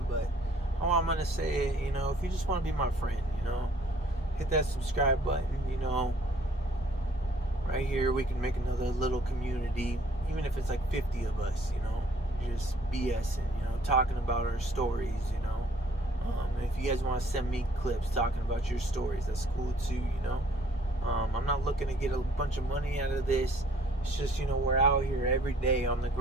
but all I'm going to say is, you know, if you just want to be my friend, you know, hit that subscribe button, you know. Right here, we can make another little community, even if it's like 50 of us, you know, just BSing, you know, talking about our stories, you know. And if you guys want to send me clips talking about your stories, that's cool too, you know. I'm not looking to get a bunch of money out of this. It's just, you know, we're out here every day on the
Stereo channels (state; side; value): normal; both; correlation 0.59